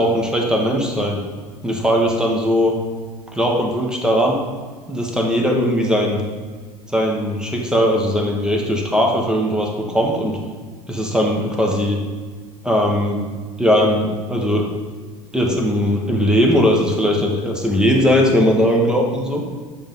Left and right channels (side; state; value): both; normal; correlation 0.58